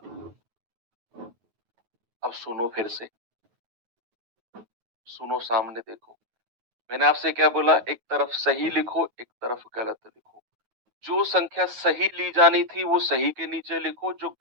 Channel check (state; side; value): late; left; 9.3 ms